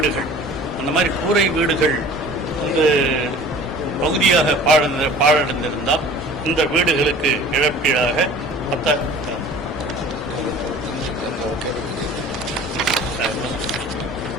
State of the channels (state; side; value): normal; both; correlation 0.45